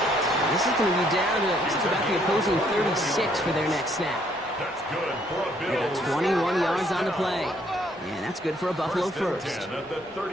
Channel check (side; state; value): both; normal; correlation 0.67